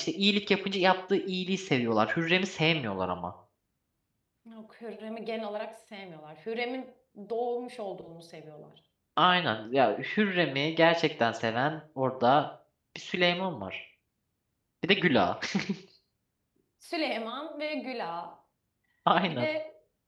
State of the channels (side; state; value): both; identical; correlation 1.00